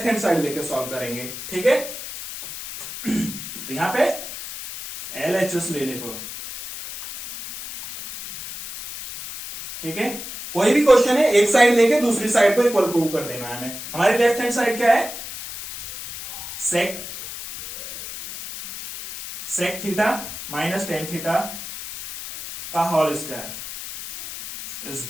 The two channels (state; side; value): noise; left; hiss, 10 dB below the sound